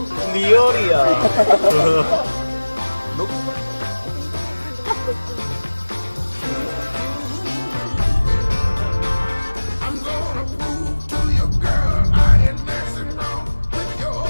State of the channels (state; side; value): inverted; both; correlation -1.00